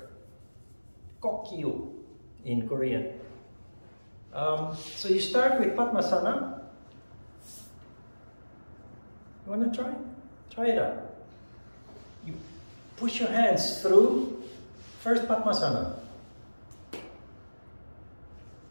Kokyu in Korean. So you start with Padmasana. You want to try? Try it out. You push your hands through. First Padmasana.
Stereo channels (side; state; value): both; inverted; correlation -1.00